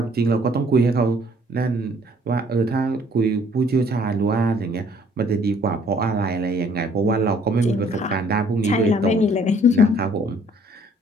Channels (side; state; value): both; normal; correlation 0.59